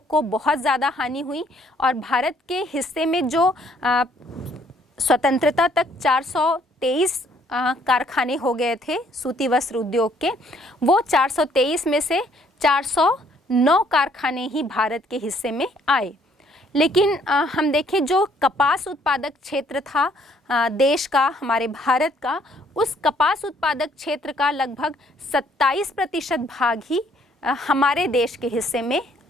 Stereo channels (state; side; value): normal; both; correlation 0.64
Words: को बहुत ज़्यादा हानि हुई और भारत के हिस्से में जो स्वतंत्रता तक 423 कारखाने हो गए थे सूती वस्त्र उद्योग के, वो 423 में से 409 कारखाने ही भारत के हिस्से में आए। लेकिन हम देखें जो कपास उत्पादक क्षेत्र था देश का, हमारे भारत का, उस कपास उत्पादक क्षेत्र का लगभग 27% भाग ही हमारे देश के हिस्से में